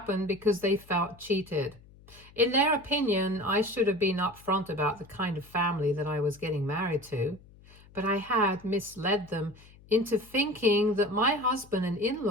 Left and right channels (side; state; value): left; noise; hum, 24 dB below the sound